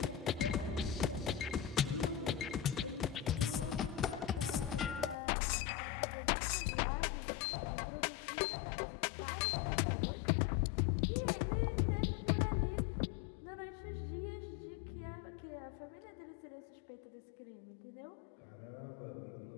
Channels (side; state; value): right; drops out; at 5.2 s